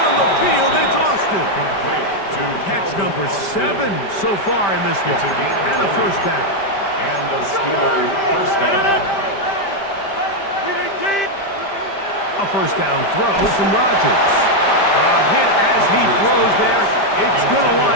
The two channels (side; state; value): right; late; 5.1 ms